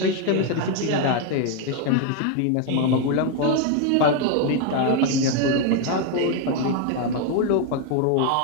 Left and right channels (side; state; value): both; different; correlation 0.01